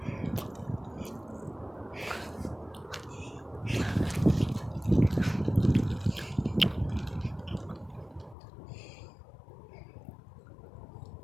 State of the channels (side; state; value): right; drops out; at 8.3 s